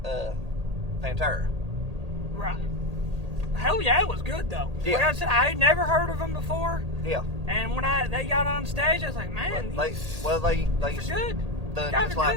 Pantera. Right. Hell Yeah, it was good though. Yeah. Like I said, I had never heard of them before. Yeah. And when they got on stage, I was like, man, they good.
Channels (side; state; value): left; late; 1.8 ms